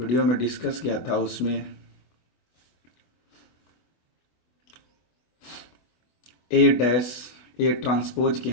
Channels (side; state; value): right; late; 24 ms